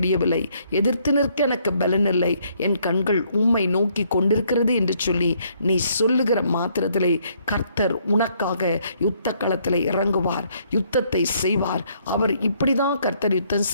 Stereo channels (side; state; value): both; inverted; correlation -0.68